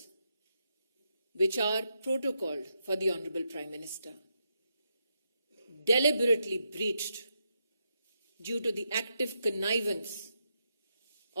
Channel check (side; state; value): both; inverted; correlation -0.83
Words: which are protocoled for the Honorable Prime Minister deliberately breached due to the active connivance